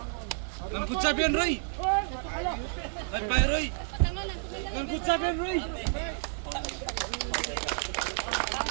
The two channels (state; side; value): silent; left; 58 dB below the other